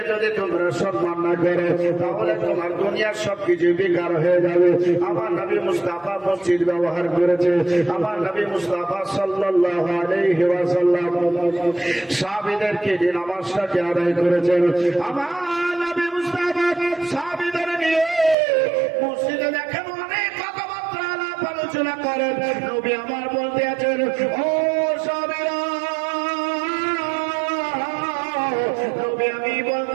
যদি তোমরা সম্মান না করো, তাহলে তোমার দুনিয়ার সবকিছু বেকার হয়ে যাবে। আমার নবী মুস্তাফা মসজিদ ব্যবহার করেছে, আমার নবী মুস্তাফা সাল্লাল্লাহু আলাইহি ওয়াসাল্লাম সাহাবীদেরকে যে নামাজটাকে আদায় করেছেন, আমার নবী মুস্তাফা সাহাবীদের নিয়ে মসজিদে দেখেন অনেক কথাবার্তা আলাপ আলোচনা করেন। নবী আমার বলতে আছেন, ও সাহাবীরা, নবী আমি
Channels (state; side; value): drops out; left; at 18.4 s